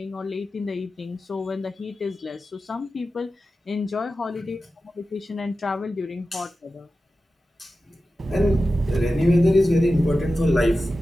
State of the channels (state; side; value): normal; both; correlation 0.93